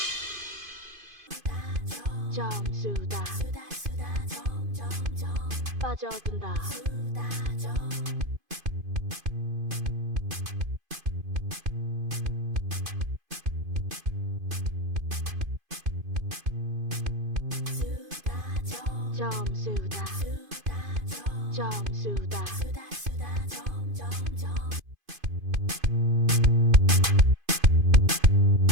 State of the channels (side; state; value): left; late; 2.5 ms